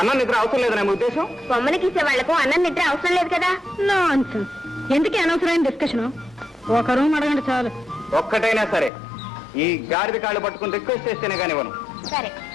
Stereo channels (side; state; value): right; drops out; at 8.9 s